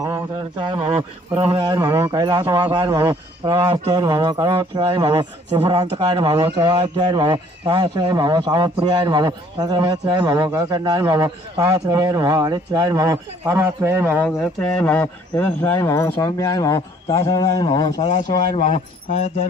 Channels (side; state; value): both; normal; correlation 0.59